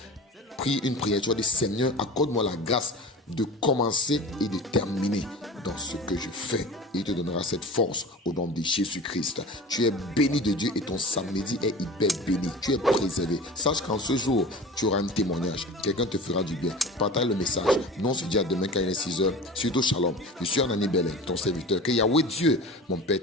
Prie une prière. Tu vas dire, Seigneur, accorde-moi la grâce de commencer et de terminer dans ce que je fais. Il te donnera cette force au nom de Jésus-Christ. Tu es béni de Dieu et ton samedi est hyper béni. Tu es préservé. Sache qu'en ce jour, tu auras un témoignage. Quelqu'un te fera du bien. Partage le message. Nous on se dit à demain quand il est 6 heures. Surtout shalom. Je suis Anani Bellet, ton serviteur. Que Yahweh Dieu, mon Père,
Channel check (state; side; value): normal; both; correlation 0.36